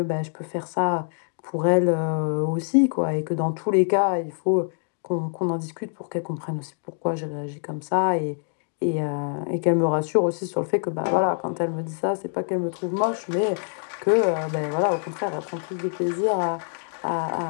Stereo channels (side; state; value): right; silent; 62 dB below the other